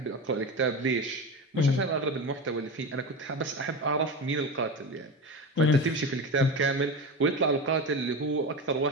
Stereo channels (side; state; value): both; normal; correlation 0.24